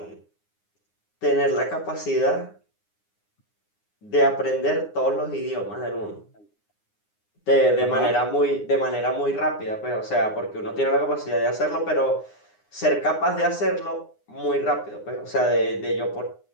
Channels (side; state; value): right; late; 9.7 ms